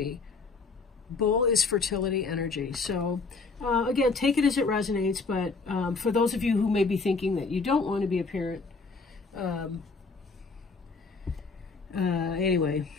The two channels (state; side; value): quieter; right; 4.3 dB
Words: Bowl is fertility energy. So again, take it as it resonates, but for those of you who may be thinking that you don't want to be a parent, anyway,